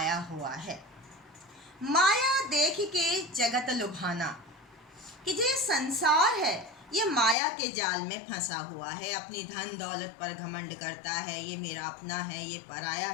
हुआ है। माया देख के जगत लुभाना, कि जो संसार है ये माया के जाल में फंसा हुआ है, अपनी धन दौलत पर घमंड करता है, ये मेरा अपना है, ये पराया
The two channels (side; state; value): right; drops out; at 7.4 s